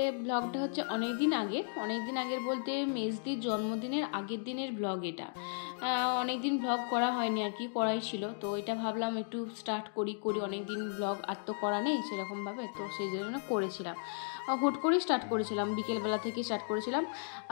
ব্লগটা হচ্ছে অনেক দিন আগের বলতে মেজদির জন্মদিনের আগের দিনের ব্লগ এটা। অনেক দিন ব্লগ করা হয়নি আর কি, করাই ছিল। তো এটা ভাবলাম একটু স্টার্ট করি অনেক দিন ব্লগ আর তো করা নেই সেরকমভাবে, তো সেই জন্য করেছিলাম। হুট করেই স্টার্ট করেছিলাম, বিকেলবেলা থেকে স্টার্ট করেছিলাম।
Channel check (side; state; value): right; silent; digital silence